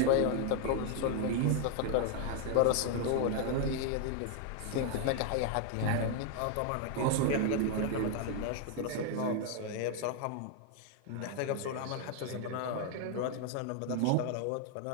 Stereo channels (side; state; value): both; different; correlation 0.00